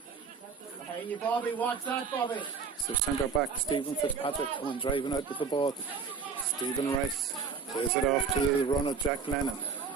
Hey, you Bobby, what's that, Bobby? So centre back Stephen Fitzpatrick coming driving out with the ball. Stephen Rice plays it off to the run of Jack Lennon.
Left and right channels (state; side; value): quieter; left; 5.6 dB